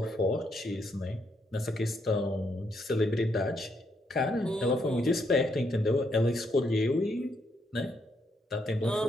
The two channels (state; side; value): normal; both; correlation 0.76